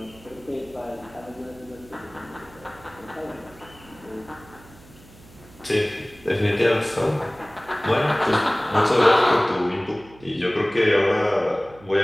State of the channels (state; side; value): noise; right; hum, 23 dB below the sound